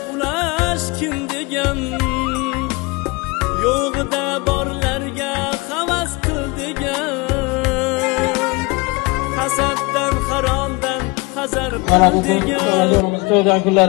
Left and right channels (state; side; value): quieter; right; 26.5 dB